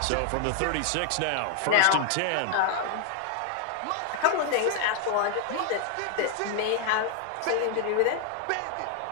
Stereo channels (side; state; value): both; different; correlation 0.00